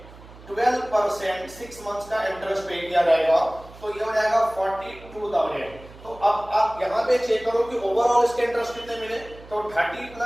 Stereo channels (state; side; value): noise; right; hum, 20 dB below the sound